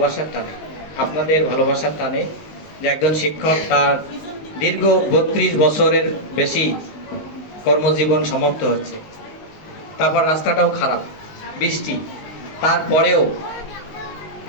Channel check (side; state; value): right; late; 19 ms